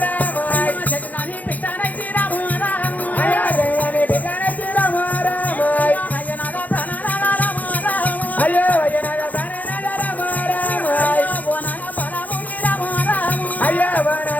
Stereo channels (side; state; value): right; late; 0.080 ms